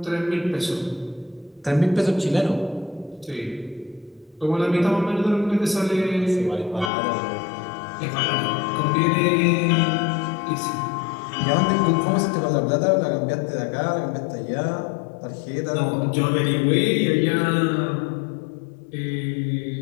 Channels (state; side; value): drops out; right; at 6.9 s